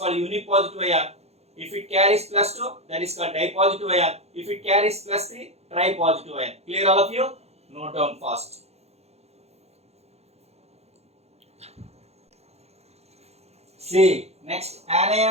unipositive ion. If it carries plus 2, that is called di-positive ion. If it carries plus 3, tri-positive ion. Clear all of you? Note down fast. See, next,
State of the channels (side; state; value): left; late; 0.31 ms